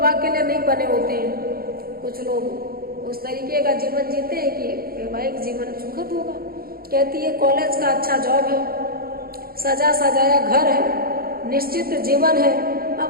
के लिए नहीं बने होते हैं, कुछ लोग उस तरीके का जीवन जीते हैं कि वैवाहिक जीवन सुखद होगा। कहती है कॉलेज का अच्छा जॉब है, सजा सजाया घर है, निश्चित जीवन है,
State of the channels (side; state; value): left; late; 0.43 ms